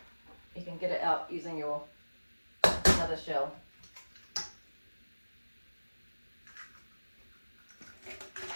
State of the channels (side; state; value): both; inverted; correlation -1.00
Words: you can get it out using your another shell.